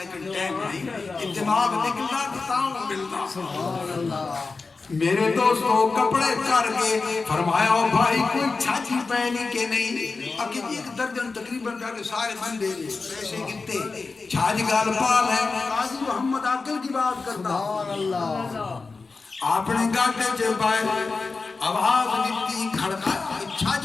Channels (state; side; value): quieter; right; 4.1 dB